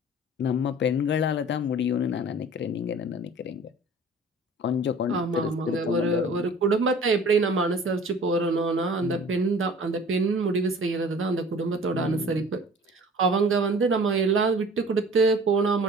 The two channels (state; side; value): normal; both; correlation 0.46